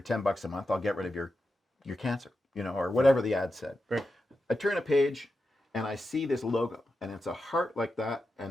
$10 a month, I'll get rid of your cancer, or whatever the ad said. right I turn a page and I see this logo, and it's a heart like that,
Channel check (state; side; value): normal; both; correlation 0.89